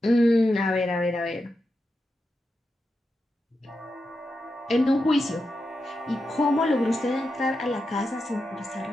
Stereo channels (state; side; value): normal; both; correlation 0.88